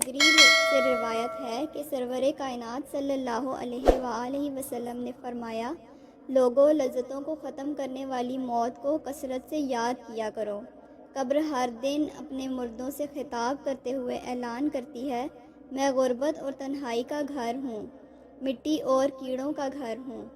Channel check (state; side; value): identical; both; correlation 1.00